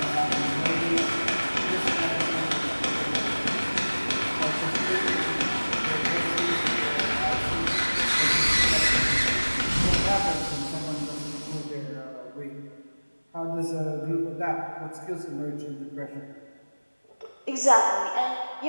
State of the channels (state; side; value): inverted; both; correlation -1.00